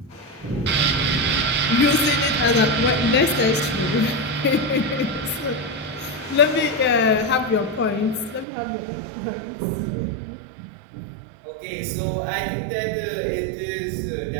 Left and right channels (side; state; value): left; drops out; at 8.5 s